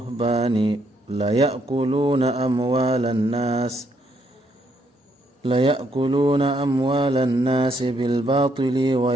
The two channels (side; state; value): both; normal; correlation 0.73